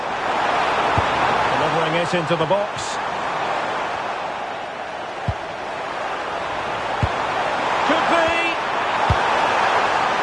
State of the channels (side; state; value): both; identical; correlation 1.00